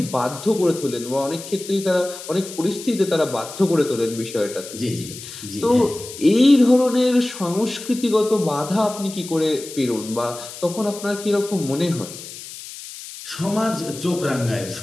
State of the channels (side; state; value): left; noise; hiss, 13 dB below the sound